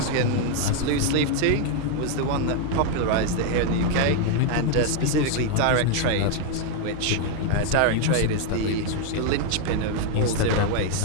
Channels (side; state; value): both; different; correlation 0.00